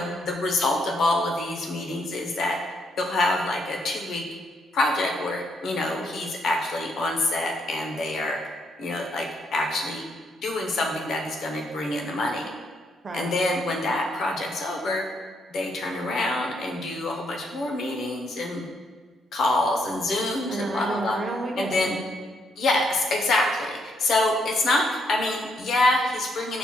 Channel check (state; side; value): normal; both; correlation 0.75